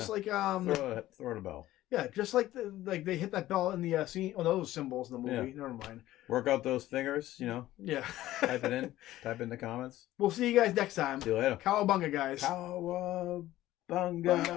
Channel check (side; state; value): right; quieter; 15.1 dB